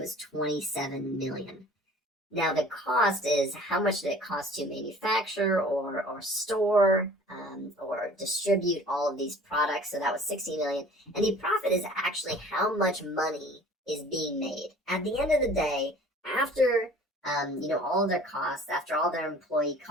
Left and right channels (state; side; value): normal; both; correlation 0.48